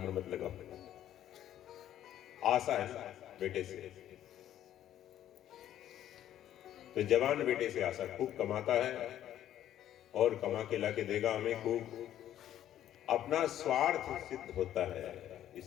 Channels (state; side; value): quieter; right; 11.6 dB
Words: मत लगाओ। आशा है बेटे से, तो जवान बेटे से आशा, खूब कमाता है और कमा के लाके देगा हमें खूब, अपना स्वार्थ सिद्ध होता है,